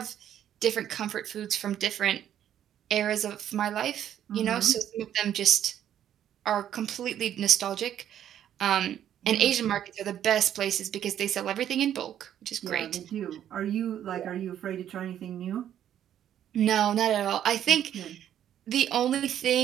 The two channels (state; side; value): quieter; left; 10.5 dB